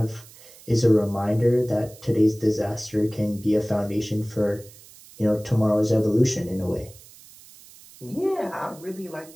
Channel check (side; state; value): right; noise; hiss, 22 dB below the sound